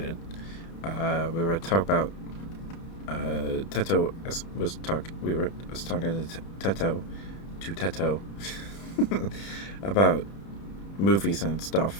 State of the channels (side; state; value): right; late; 30 ms